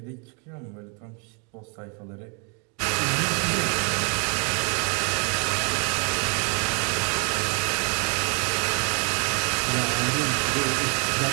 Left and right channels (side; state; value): left; quieter; 36.5 dB